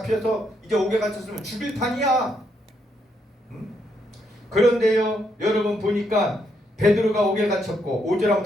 이제 옥에 갇혔으면 죽일 판이야. 그런데요 여러분 보니까 베드로가 옥에 갇혔고 5절 한번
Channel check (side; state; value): both; normal; correlation 0.76